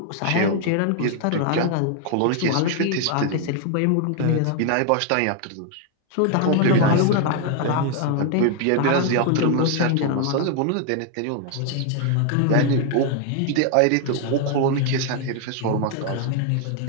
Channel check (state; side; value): different; both; correlation 0.00